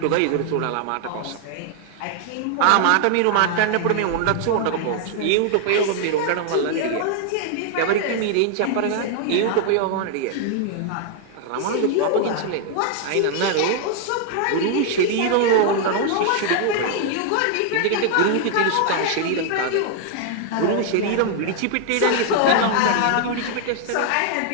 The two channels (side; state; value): both; different; correlation 0.00